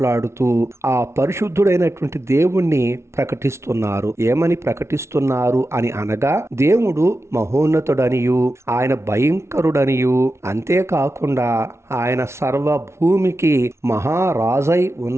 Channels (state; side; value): late; left; 0.13 ms